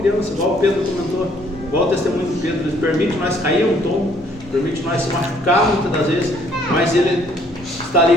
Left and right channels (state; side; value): noise; left; hum, 24 dB below the sound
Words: igual o Pedro comentou, igual o testemunho do Pedro. Ele permite nós cair um tombo, permite nós se machucar muitas das vezes, mas Ele está ali